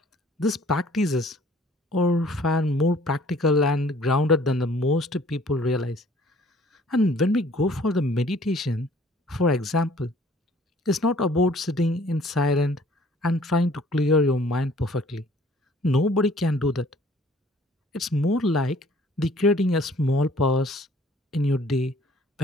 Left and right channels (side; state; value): both; normal; correlation 0.56